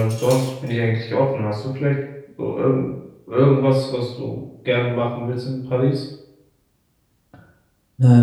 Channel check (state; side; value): identical; both; correlation 1.00